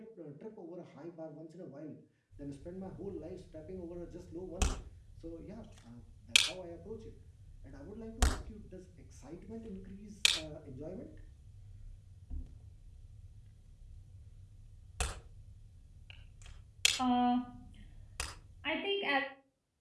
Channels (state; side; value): identical; both; correlation 1.00